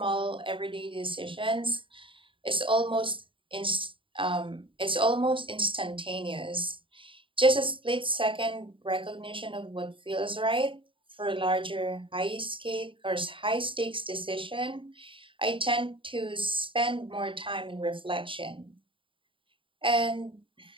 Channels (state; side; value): late; left; 0.25 ms